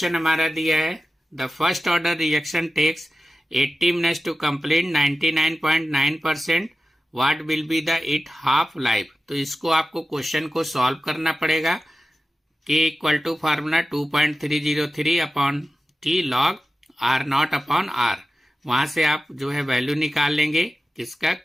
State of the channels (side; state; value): both; normal; correlation 0.94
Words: हमारा दिया है, the first order reaction takes 80 minutes to complete 99.9%, what will be the it half life. तो इसको आपको क्वेश्चन को सॉल्व करना पड़ेगा। K = formula 2.303/T log R0 upon R। वहां से आप जो है वैल्यू निकाल लेंगे, किसका,